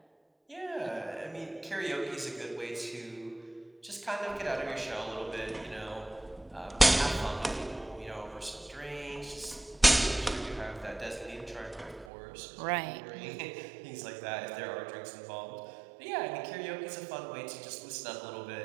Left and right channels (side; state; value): left; drops out; at 12.1 s